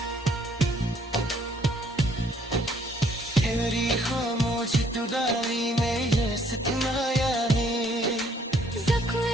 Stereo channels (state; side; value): normal; both; correlation 0.64